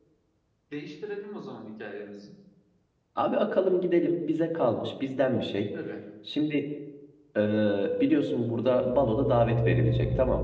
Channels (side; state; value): both; identical; correlation 1.00